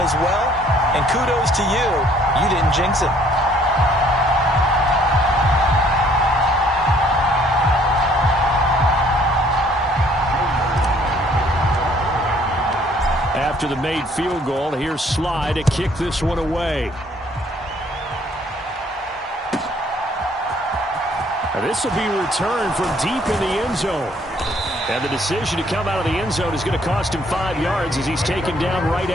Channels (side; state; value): both; normal; correlation 0.61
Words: well. And kudos to you. You didn't jinx it. After the made field goal, here's Sly to kick this one away. And this will be returned from deep in the end zone. And the decision to come out of the end zone is going to cost him 5 yards as he's taken down right